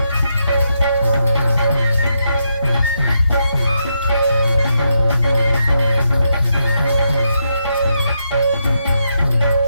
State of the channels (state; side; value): inverted; both; correlation -0.81